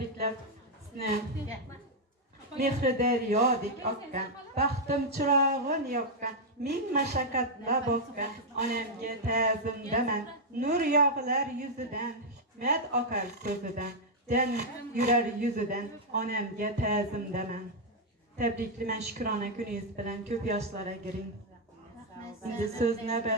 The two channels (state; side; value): normal; both; correlation -0.02